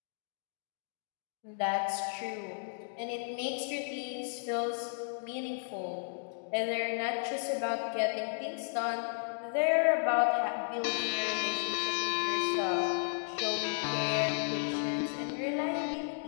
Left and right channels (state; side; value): silent; right; digital silence